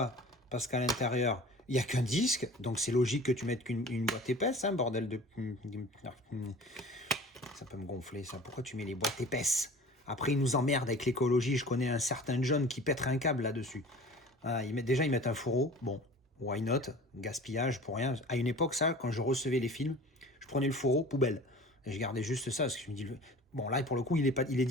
Parce qu'à l'intérieur, il n'y a qu'un disque. Donc c'est logique que tu mettes qu'une boîte épaisse, hein, bordel de... Ça peut me gonfler, ça. Pourquoi tu mets les boîtes épaisses? Après, ils nous emmerdent avec l'écologie. Je connais un certain John qui pèterait un câble là-dessus. Ah, ils mettent un fourreau. Bon, why not? Gaspillage pour rien. À une époque, ça, quand je recevais les films, je prenais le fourreau, poubelle. Et je gardais juste ça, parce que je me dis... Bon, là, pour le coup, il est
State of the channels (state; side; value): normal; both; correlation 0.42